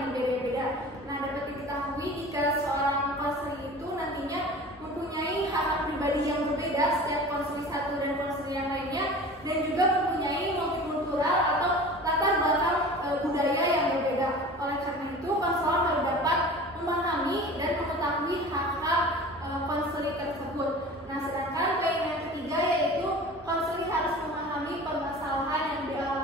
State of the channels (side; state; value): both; normal; correlation 0.39